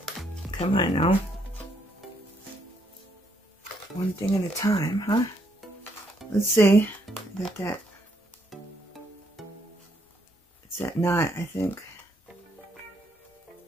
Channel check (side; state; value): both; normal; correlation 0.73